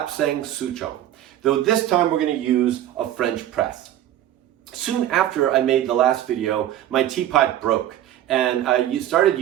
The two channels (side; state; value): left; quieter; 12.3 dB